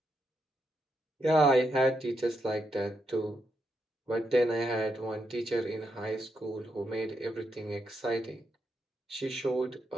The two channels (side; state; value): both; normal; correlation 0.81